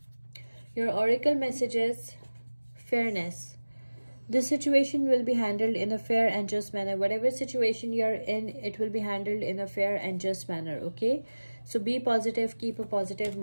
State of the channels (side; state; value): both; inverted; correlation -1.00